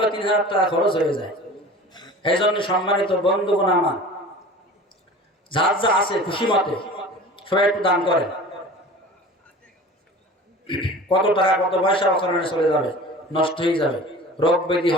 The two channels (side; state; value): both; normal; correlation 0.40